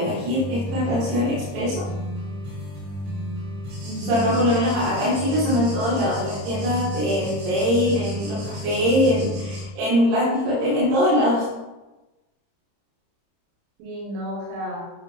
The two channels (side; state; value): left; late; 30 ms